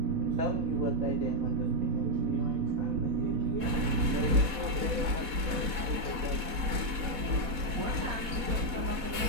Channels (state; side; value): late; left; 4.1 ms